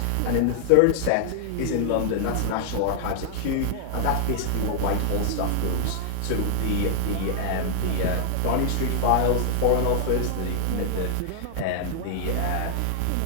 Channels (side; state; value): both; different; correlation -0.01